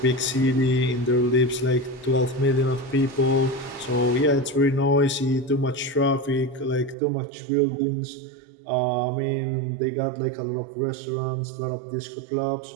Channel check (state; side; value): drops out; left; at 7.0 s